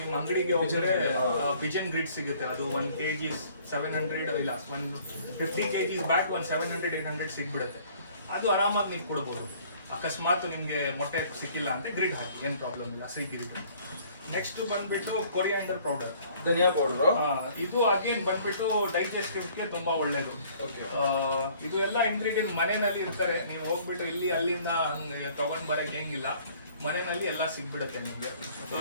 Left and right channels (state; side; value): inverted; both; correlation -0.57